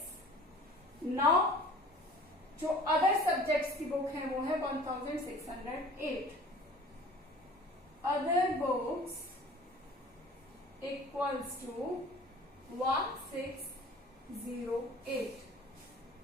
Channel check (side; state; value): both; normal; correlation 0.46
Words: Now जो अदर सब्जेक्ट्स की बुक है वो है 1608। Other books equals to